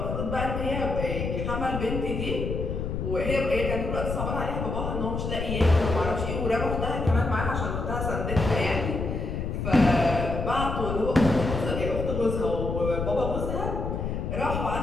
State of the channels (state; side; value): noise; left; rumble, 3 dB below the sound